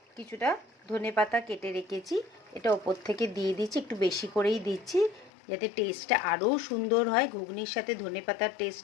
কিছুটা ধনেপাতা কেটে রেখেছি, এটা ওপর থেকে দিয়ে দিচ্ছি, একটু বেশি করেই দিচ্ছি যাতে টেস্টটা আরও সুন্দর হয়। ঘুগনির সাথে ধনেপাতার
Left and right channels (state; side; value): drops out; right; at 5.3 s